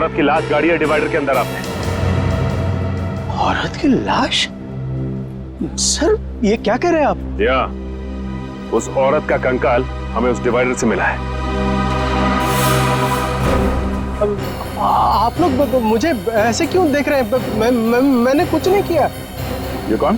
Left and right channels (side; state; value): both; identical; correlation 1.00